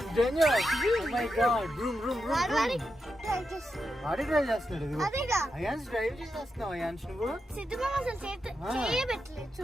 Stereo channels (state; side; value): normal; both; correlation 0.87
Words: is dangerous. Oh my God. Vroom, vroom, vroom, వాడి vroom. Drive చేస్తు. వాడి drive చేస్తున్నాడు ఇది. అదేగా. అయాన్స్ డ్రైవ్ చేస్తున్నావు ions నువ్వు. సిద్ధమా అసలు చేయబెట్టలేదు